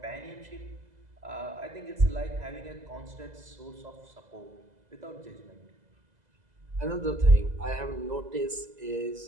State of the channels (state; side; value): late; left; 2.0 ms